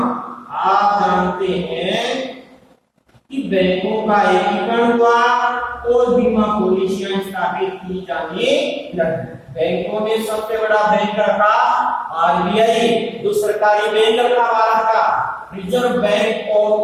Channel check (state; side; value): identical; both; correlation 1.00